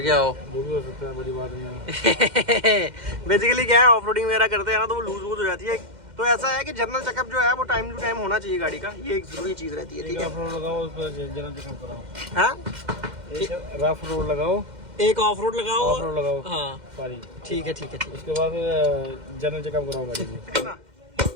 हो, वो भी हो सकता है, बड़ी बात नहीं है। बेसिकली क्या है, ऑफ रोडिंग वगैरह करते हैं ना तो वो लूज हो जाती है। तो ऐसा है कि जनरल चेकअप जो है वो टाइम टू टाइम होना चाहिए गाड़ी का, ये एक जरूरी चीज रहती है। ठीक है, जनरल चेकअप कराओ। हाँ, रफ रोड लगाओ, एक ऑफ रोड लगाओ, हाँ सॉरी, ठीक है। उसके बाद जनरल चेकअप कराओ गाड़ी की।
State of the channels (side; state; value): left; late; 2.1 ms